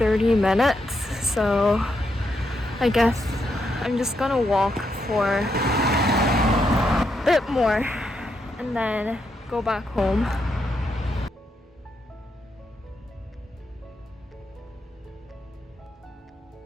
minutes, so I guess I'm just gonna walk for a bit more and then go back home.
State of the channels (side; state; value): both; normal; correlation 0.81